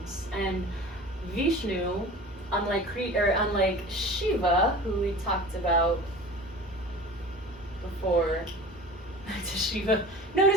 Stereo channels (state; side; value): normal; both; correlation 0.39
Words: And Vishnu, unlike Shiva, who we talked about before, to Shiva,